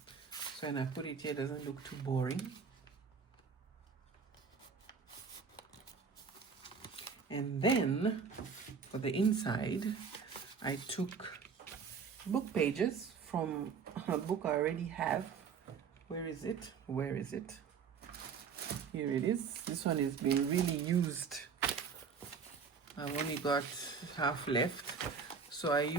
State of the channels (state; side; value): quieter; left; 6.0 dB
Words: So when I put it here, it doesn't look too boring. And then for the inside, I took book pages from a book I already have. Where is it? Where is it? Here it is. This one has been really used. I've only got half left. So I